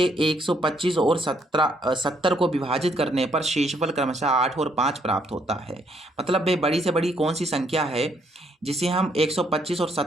125 और 70 को विभाजित करने पर शेषफल क्रमशः 8 और 5 प्राप्त होता है। मतलब वह बड़ी से बड़ी कौन सी संख्या है जिसे हम 125 और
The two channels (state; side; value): normal; both; correlation 0.70